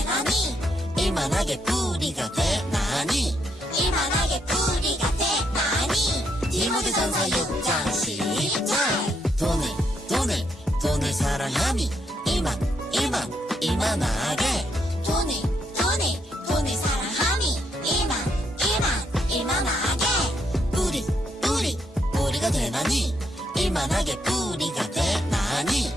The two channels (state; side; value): normal; both; correlation 0.76